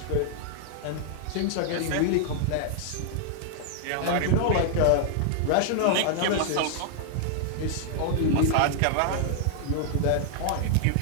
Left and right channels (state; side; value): different; both; correlation -0.01